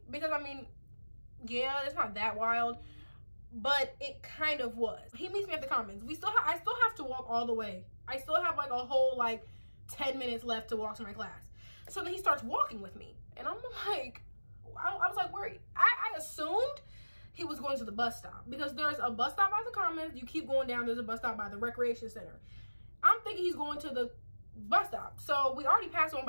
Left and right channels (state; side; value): inverted; both; correlation -1.00